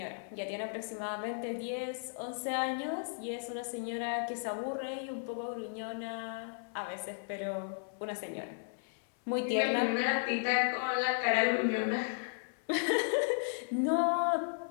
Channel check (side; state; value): right; silent; 55 dB below the other